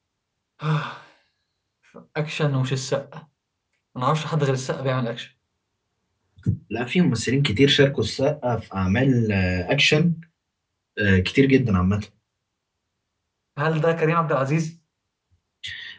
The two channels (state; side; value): identical; both; correlation 1.00